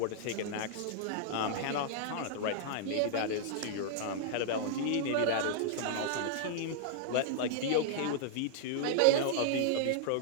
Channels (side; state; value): both; different; correlation -0.01